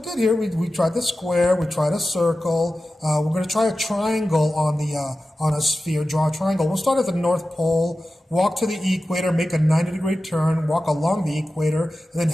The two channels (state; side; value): normal; both; correlation 0.94